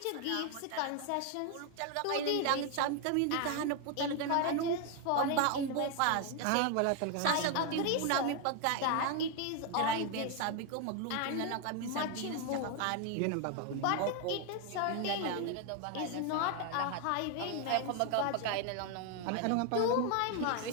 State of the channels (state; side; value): different; both; correlation 0.01